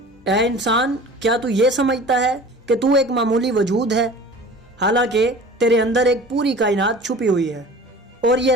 ऐ इंसान, क्या तू ये समझता है कि तू एक मामूली वजूद है, हालांकि तेरे अंदर एक पूरी कायनात छुपी हुई है। और ये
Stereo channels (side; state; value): both; normal; correlation 0.42